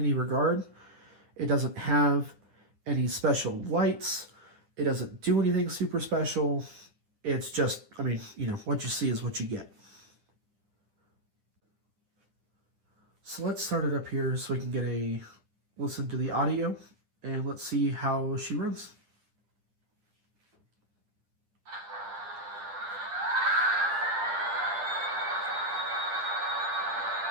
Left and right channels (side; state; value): left; late; 9.8 ms